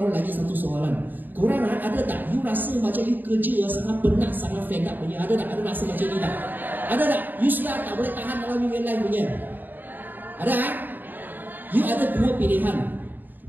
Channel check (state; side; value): late; left; 0.089 ms